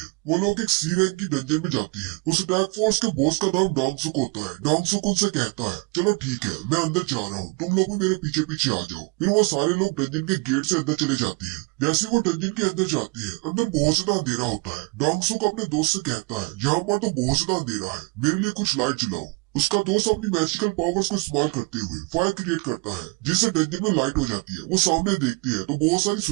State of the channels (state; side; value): quieter; left; 29.0 dB